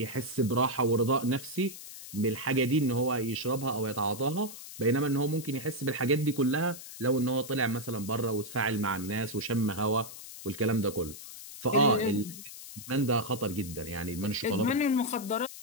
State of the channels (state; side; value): noise; left; hiss, 13 dB below the sound